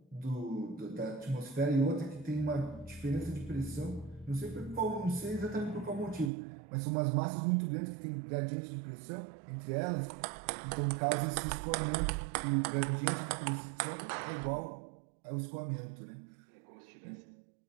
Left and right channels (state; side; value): drops out; left; at 6.3 s